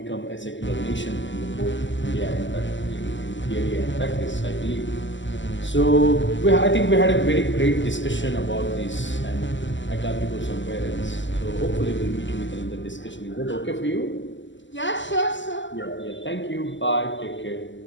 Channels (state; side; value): late; right; 0.54 ms